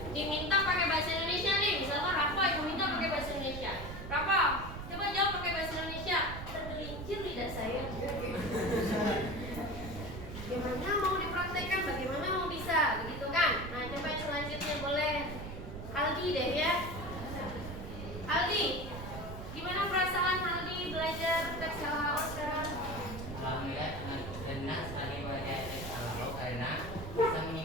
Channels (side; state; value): right; noise; rumble, 9 dB below the sound